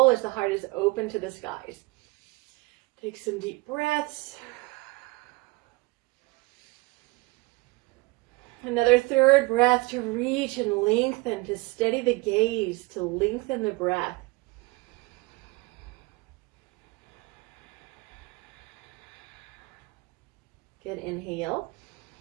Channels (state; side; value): quieter; left; 24.0 dB